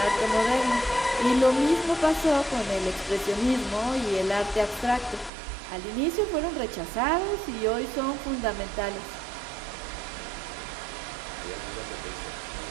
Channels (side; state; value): left; drops out; at 5.3 s